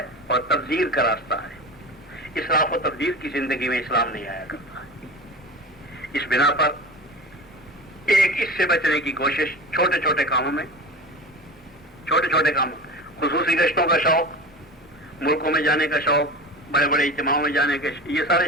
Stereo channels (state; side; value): normal; both; correlation 0.32